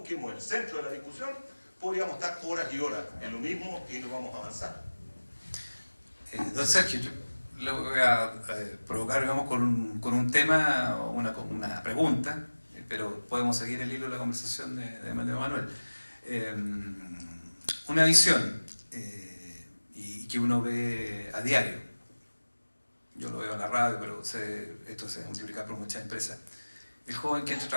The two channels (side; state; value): both; inverted; correlation -1.00